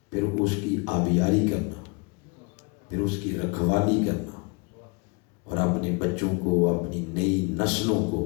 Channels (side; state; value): right; quieter; 31.1 dB